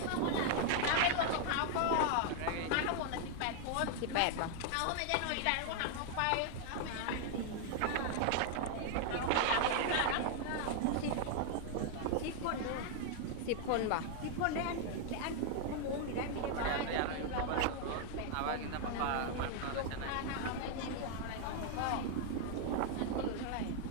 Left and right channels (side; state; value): both; different; correlation 0.00